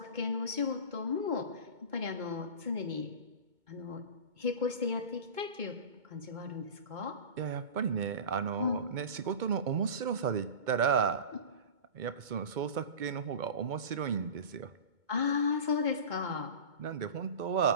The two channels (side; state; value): left; late; 2.2 ms